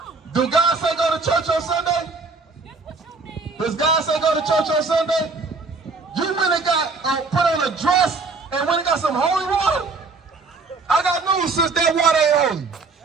Do God say go to church on Sunday? Does God say go to church on Sunday? You went and got put on a dress and went and got some holy water? I got news, sis, that water ain't holy.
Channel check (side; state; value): left; quieter; 4.0 dB